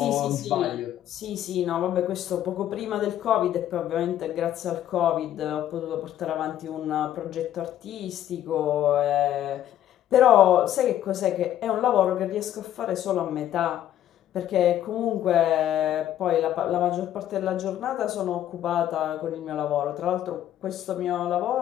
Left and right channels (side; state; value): right; quieter; 11.7 dB